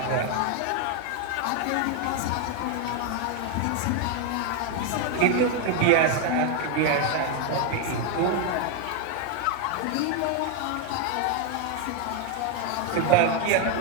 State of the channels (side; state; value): both; different; correlation 0.01